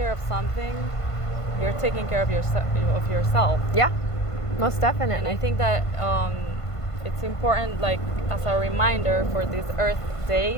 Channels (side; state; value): right; late; 1.5 ms